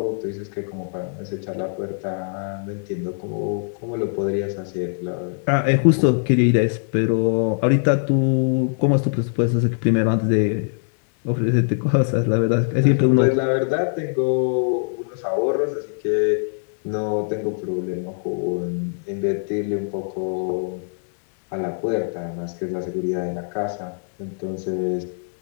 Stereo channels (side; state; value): right; silent; digital silence